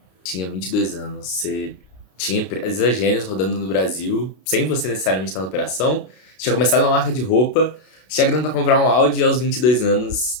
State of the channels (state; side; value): late; right; 32 ms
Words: Tinha 22 anos. Você tinha empresas Gênios rodando no Brasil, sem você necessariamente estar na operação. Você tinha começado uma marca de roupa. Você tinha grana para comprar um Audi aos 22 anos